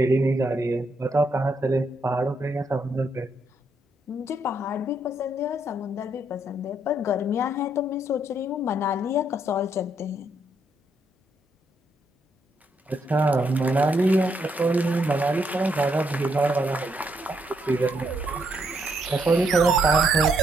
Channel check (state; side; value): normal; both; correlation 0.75